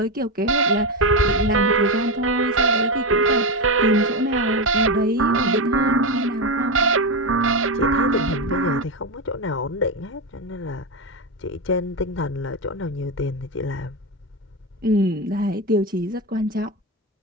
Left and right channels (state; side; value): normal; both; correlation 0.12